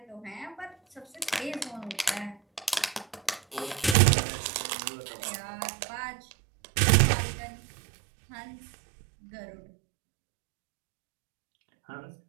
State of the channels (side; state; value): left; drops out; at 4.0 s